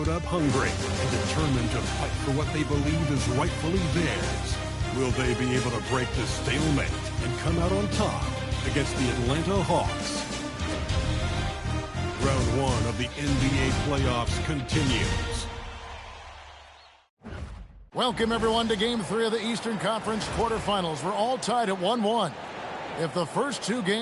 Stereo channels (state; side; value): identical; both; correlation 1.00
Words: up hungry and determined to fight for what they believe is rightfully theirs. Will they be able to break the stalemate and come out on top against the Atlanta Hawks? Round one of the NBA playoffs continues. Welcome, everyone, to Game 3 of the Eastern Conference quarterfinals. We're all tied at 1-1. If the first two